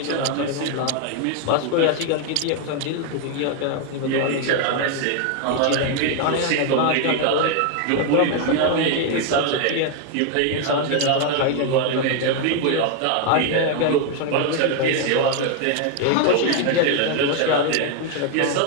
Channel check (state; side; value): different; both; correlation 0.01